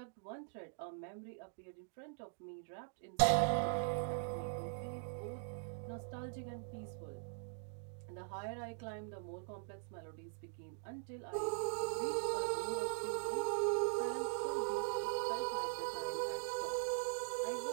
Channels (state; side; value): silent; left; digital silence